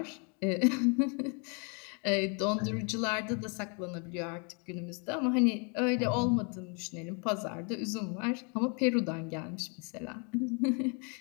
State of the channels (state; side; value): quieter; right; 36.2 dB